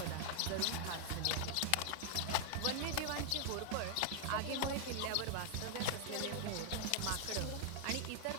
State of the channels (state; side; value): different; both; correlation 0.00